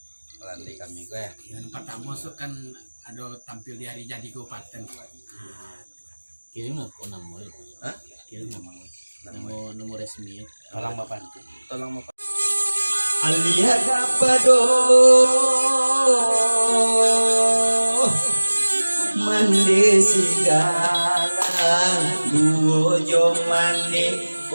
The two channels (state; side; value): inverted; both; correlation -1.00